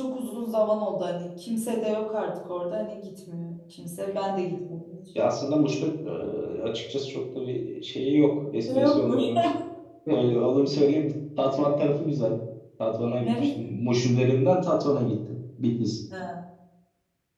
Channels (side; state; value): both; identical; correlation 1.00